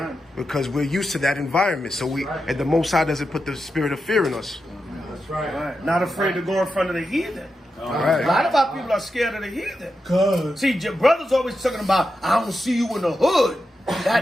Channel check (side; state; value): both; normal; correlation 0.88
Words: Because we're used to that environment. So and the Most High doesn't put the spirit of fear in us. That's right. Not afraid to go in front of the heathen. Right. A lot of our people are scared of the heathen. See, your brother's always talking about, I don't see you in the hood.